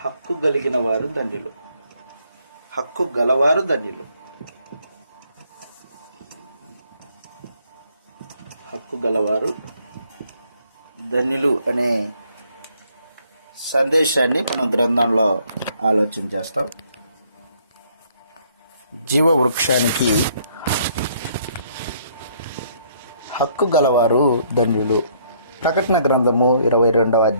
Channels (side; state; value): both; inverted; correlation -0.67